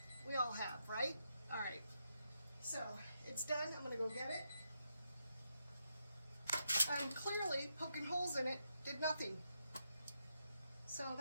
We all have, right? All right. So it's done. I'm going to go get it. And clearly poking holes in it did nothing. So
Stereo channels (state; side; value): inverted; both; correlation -0.83